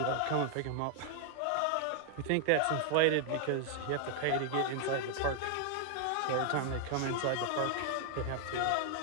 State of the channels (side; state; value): both; different; correlation 0.00